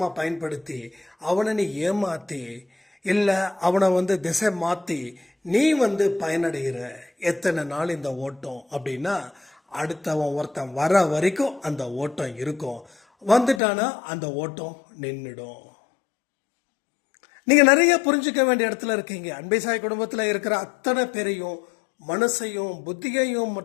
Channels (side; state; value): right; drops out; at 13.6 s